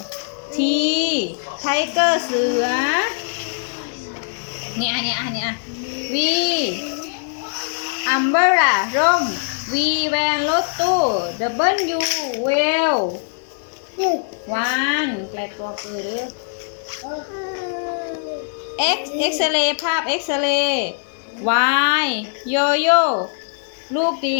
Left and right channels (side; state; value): right; silent; 65 dB below the other